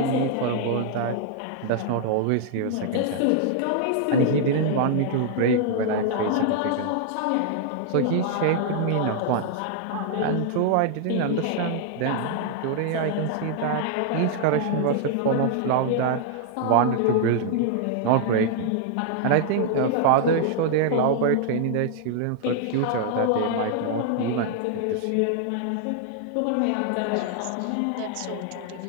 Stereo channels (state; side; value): different; both; correlation 0.00